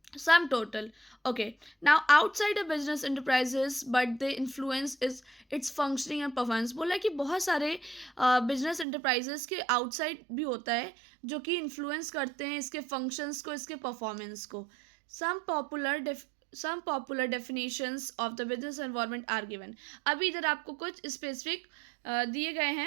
sum total. Okay, now outside a business enterprises but they influence is its functioning and performance. बोला कि बहुत सारे बिजनेस एंटरप्राइजेस के आउटसाइड भी होता है जो कि इन्फ्लुएंस करते हैं इसके फंक्शंस को, इसके परफॉर्मेंस को। some popular definitions of the business environment are given. अभी इधर आपको कुछ स्पेसिफिक दिए गए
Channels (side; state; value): left; drops out; at 8.8 s